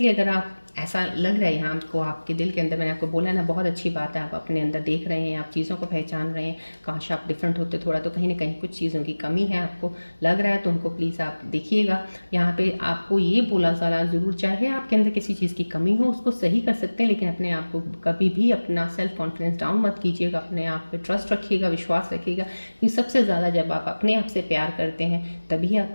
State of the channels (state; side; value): inverted; both; correlation -1.00